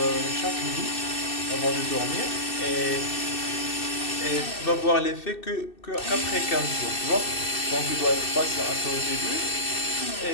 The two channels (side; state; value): right; late; 2.6 ms